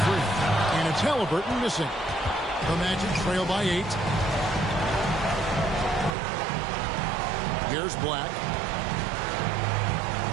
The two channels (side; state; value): left; drops out; at 6.2 s